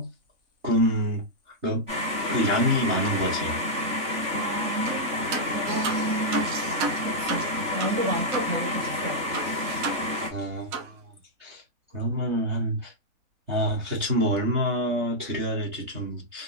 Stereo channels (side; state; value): left; late; 3.4 ms